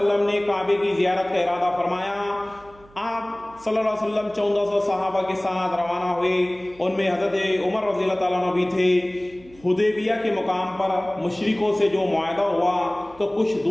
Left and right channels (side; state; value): right; noise; hum, 25 dB below the sound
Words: نے کعبے کی زیارت کا ارادہ فرمایا۔ آپ صلی اللہ علیہ وسلم 1400 صحابہ کے ساتھ روانہ ہوئے، ان میں حضرت عمر رضی اللہ تعالیٰ عنہ بھی تھے۔ حدیبیہ کے مقام پر مشرکوں سے جو معاہدہ ہوا تو کچھ